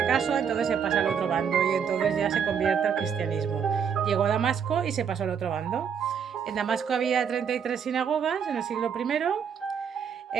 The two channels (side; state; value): left; quieter; 7.3 dB